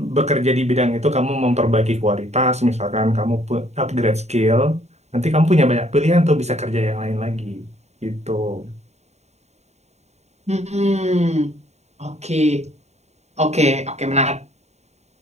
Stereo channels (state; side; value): late; left; 0.32 ms